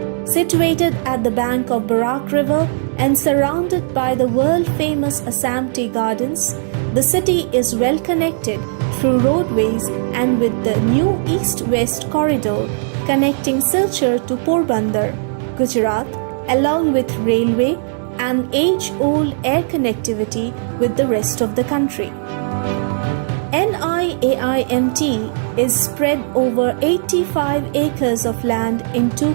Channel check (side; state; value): left; silent; digital silence